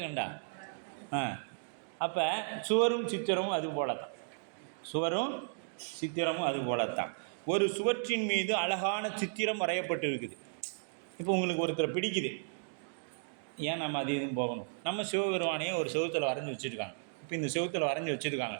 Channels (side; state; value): left; silent; digital silence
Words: கண்டா. அப்போ சுவரும் சித்திரமும் அது போலத்தான், சுவரும் சித்திரமும் அது போலத்தான். ஒரு சுவற்றின் மீது அழகான சித்திரம் வரையப்பட்டு இருக்குது. இப்போ உங்களுக்கு ஒருத்தரை பிடிக்குது, ஏன் நம்ம அது இதுவும் போகணும், நம்ம சிவபெருமானையே ஒரு செவுத்தில் வரைஞ்சி வச்சுருக்காங்க. இப்போ இந்த செவுத்தில் வரைஞ்சி வச்சுருக்காங்க